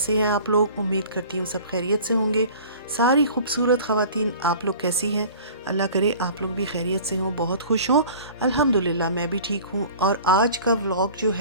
हैं आप लोग। उम्मीद करती हूँ सब खैरियत से होंगे। सारी खूबसूरत ख़वातीन, आप लोग कैसी हैं। अल्लाह करे आप लोग भी खैरियत से हों, बहुत खुश हों। अल्हम्दुलिल्लाह मैं भी ठीक हूँ। और आज का व्लॉग जो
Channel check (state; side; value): inverted; both; correlation -0.44